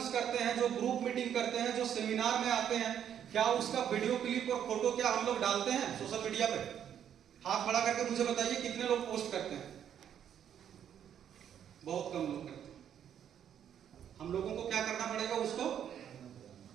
करते हैं, जो ग्रुप मीटिंग करते हैं, जो सेमिनार में आते हैं, क्या उसका वीडियो क्लिप और फोटो क्या हम लोग डालते हैं सोशल मीडिया पे? हाथ खड़ा करके मुझे बताइए कितने लोग पोस्ट करते हैं? बहुत कम लोग करते हैं। हम लोगों को क्या करना पड़ेगा? उसको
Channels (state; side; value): quieter; left; 9.4 dB